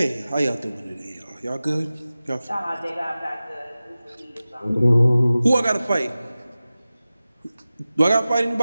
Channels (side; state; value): both; inverted; correlation -0.96